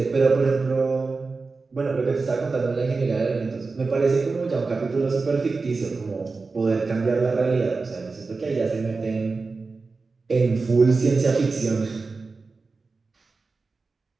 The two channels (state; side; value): quieter; left; 4.1 dB